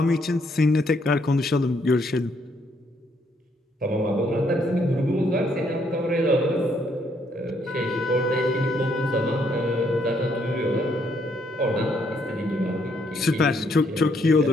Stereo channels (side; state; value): both; normal; correlation 0.71